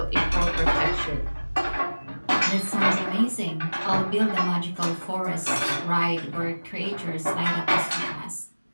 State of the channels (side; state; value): both; inverted; correlation -1.00